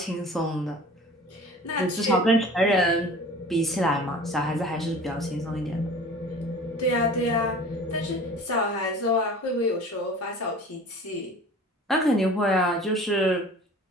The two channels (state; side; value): normal; both; correlation 0.43